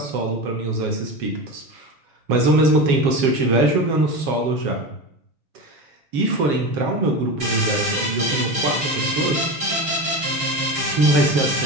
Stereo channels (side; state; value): left; late; 7.4 ms